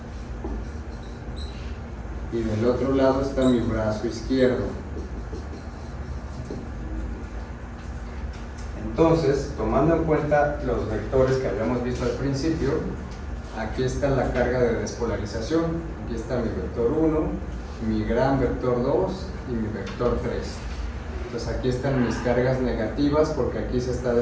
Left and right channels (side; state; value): both; identical; correlation 1.00